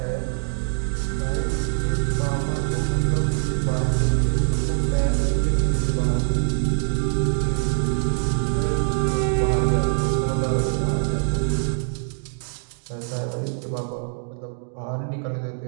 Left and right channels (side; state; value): left; silent; digital silence